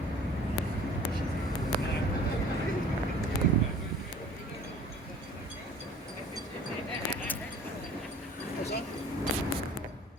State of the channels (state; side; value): normal; both; correlation 0.47